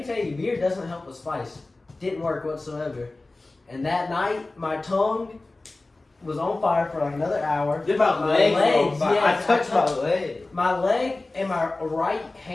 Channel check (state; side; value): quieter; right; 3.1 dB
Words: tell you, beer doesn't help with spice. Didn't work whatsoever. And that night, my tongue was on fire for like another hour. Did my My legs? legs, I yes, touched my leg. My leg and my right